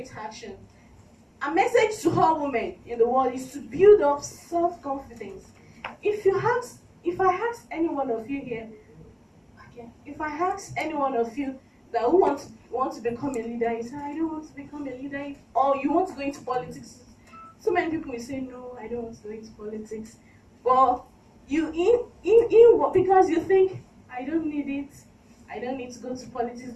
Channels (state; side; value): identical; both; correlation 1.00